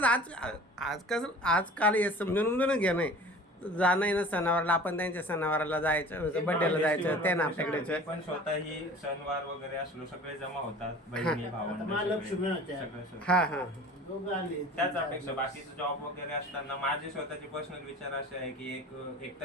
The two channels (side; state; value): both; normal; correlation 0.43